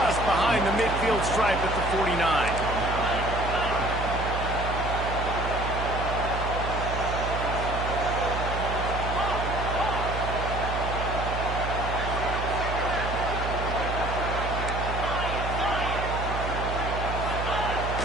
behind the midfield stripe at the 49.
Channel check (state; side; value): noise; right; hum, 4 dB below the sound